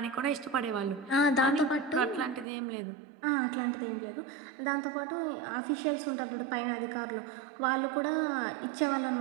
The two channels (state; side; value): drops out; left; at 2.5 s